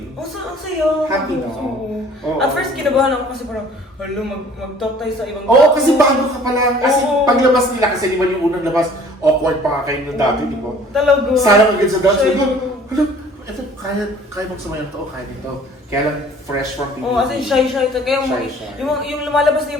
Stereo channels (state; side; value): normal; both; correlation 0.52